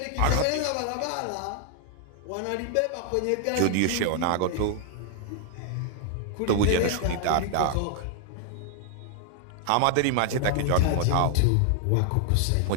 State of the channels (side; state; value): both; different; correlation 0.00